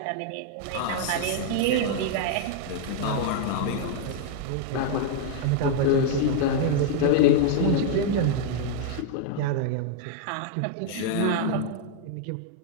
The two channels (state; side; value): different; both; correlation 0.00